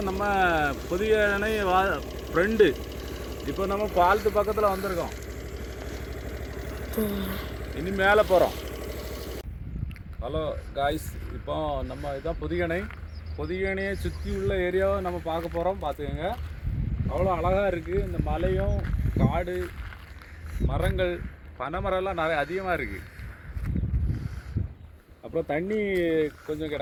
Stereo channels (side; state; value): both; identical; correlation 1.00